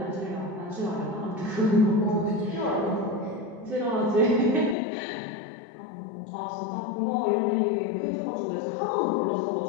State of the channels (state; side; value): drops out; right; at 4.8 s